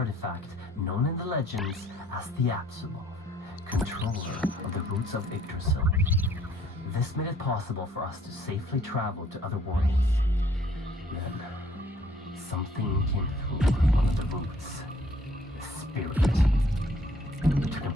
known in the legends as the Apsulov, controller of the roots of Yggdrasil. This made it possible for us to safely travel to other worlds. Then, something came through one of the roots. The spirit. It took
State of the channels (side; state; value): both; normal; correlation 0.61